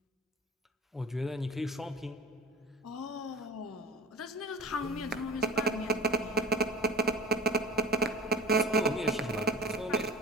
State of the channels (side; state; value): both; normal; correlation 0.39